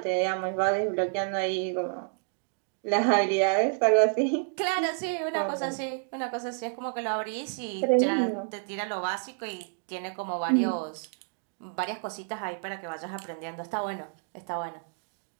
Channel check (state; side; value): silent; left; 58 dB below the other